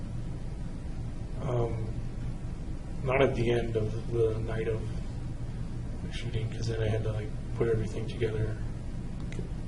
Not at the end of the night of the shooting, because then I had to like put everything together. Okay.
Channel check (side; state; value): both; identical; correlation 1.00